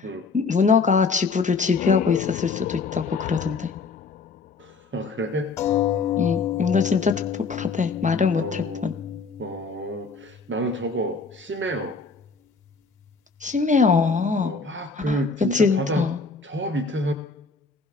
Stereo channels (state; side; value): quieter; right; 4.5 dB